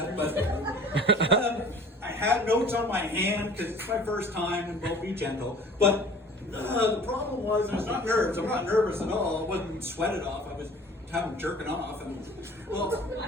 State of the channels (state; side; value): normal; both; correlation 0.47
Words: But I had notes on my hand because it's my first time, and will be gentle. But the problem was, I was not nervous. I'm not nervous at all. I wasn't sweated off. I was having jerking off, and well,